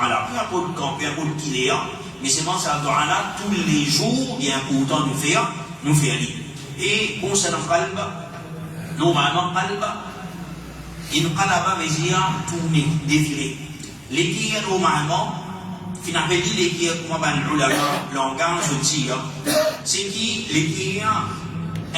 là. Peu importe le camp, peu importe qui est, mais c'est moi ça doigt là, tous les jours, il est important de faire lire. Et concernant le qalb, normalement, qalb, il qalaba veut dire tourner, défiler. Les qui normalement, finalement, les qui comme on a le langage aussi, c'est qui les qui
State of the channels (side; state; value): both; identical; correlation 1.00